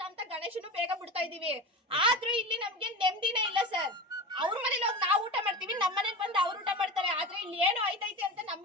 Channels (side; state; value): both; normal; correlation 0.28